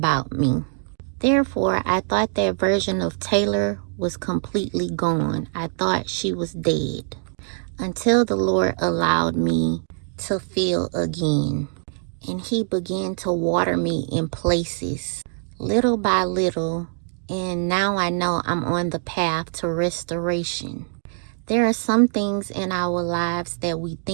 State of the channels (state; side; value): silent; left; 63 dB below the other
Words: me. Therefore, I thought that version of Taylar was completely gone. I thought she was dead. Until the Lord allowed me to feel again. And He began to water me in places, little by little. And now I know I'm on the path to restoration. There are some things in our lives that we